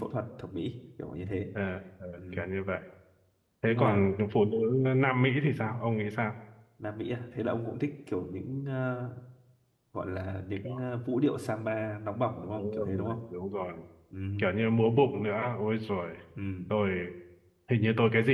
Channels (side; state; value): both; identical; correlation 1.00